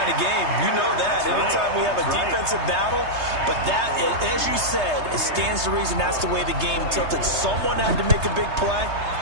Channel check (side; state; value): left; late; 3.3 ms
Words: of game. You know that. That's Anytime right. we have a defensive battle, but that, as you said, it stands to reason that's the way the game tilted. Someone had to make a big play,